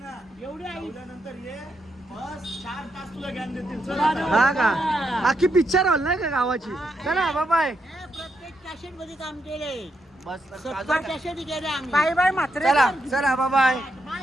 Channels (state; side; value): normal; both; correlation 0.81